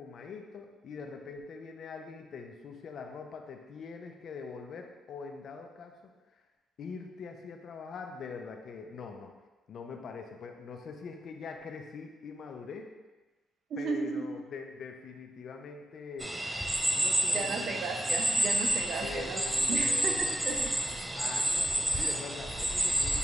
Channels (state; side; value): normal; both; correlation 0.86